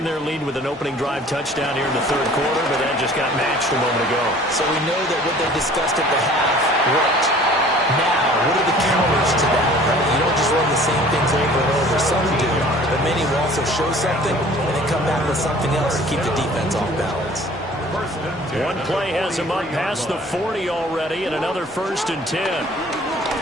their lead with an opening drive touchdown here in the 3rd quarter, but that just got matched a moment ago. So we know that what they discussed at the half worked. Now, what are the counters to that, right? You don't just run the same things over and over. Some do, but many will also show something and then come back with something else to keep the defense off balance. One play has him up past the 40 already, and another 1st and 10.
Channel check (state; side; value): normal; both; correlation 0.50